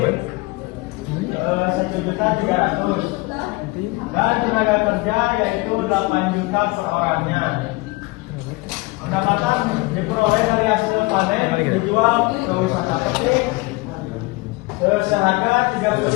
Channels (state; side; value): quieter; right; 23.5 dB